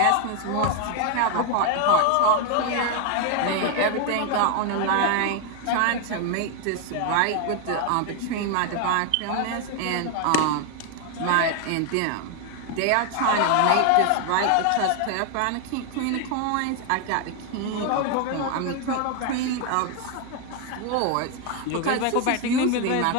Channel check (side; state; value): both; different; correlation 0.01